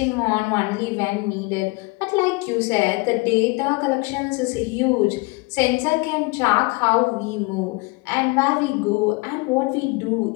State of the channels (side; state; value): right; quieter; 26.6 dB